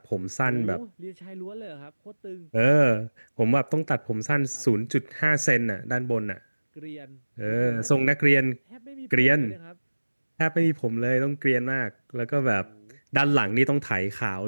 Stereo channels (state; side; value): inverted; both; correlation -1.00